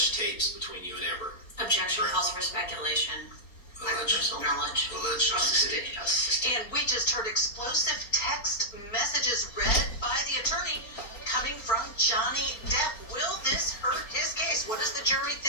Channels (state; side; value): late; right; 4.3 ms